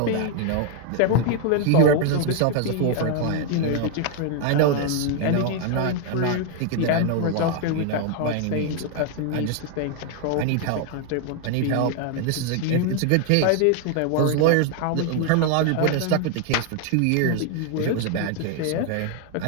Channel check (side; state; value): both; different; correlation 0.00